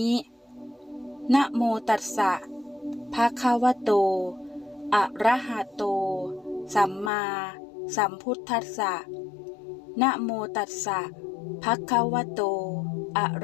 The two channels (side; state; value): right; drops out; at 7.1 s